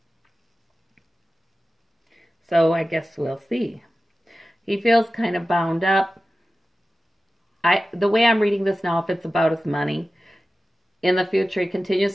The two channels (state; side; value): normal; both; correlation 0.95